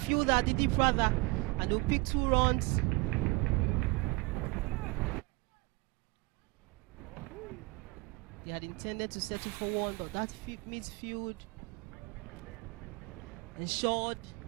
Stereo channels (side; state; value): left; quieter; 24.3 dB